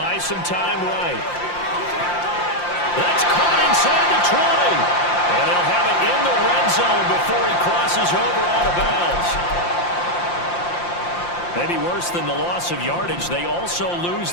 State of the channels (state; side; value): late; right; 5.7 ms